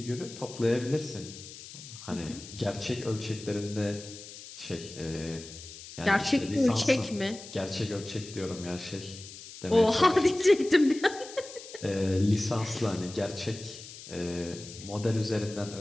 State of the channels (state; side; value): noise; left; hiss, 15 dB below the sound